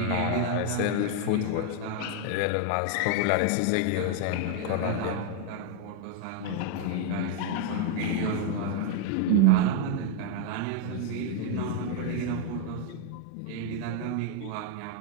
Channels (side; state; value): both; different; correlation 0.00